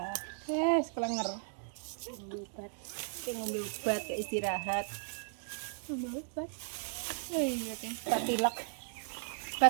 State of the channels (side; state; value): left; silent; digital silence